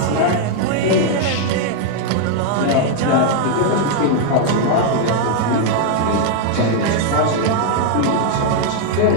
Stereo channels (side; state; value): both; different; correlation 0.00